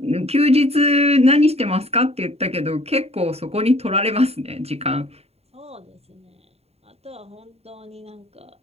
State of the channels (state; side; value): late; left; 0.30 ms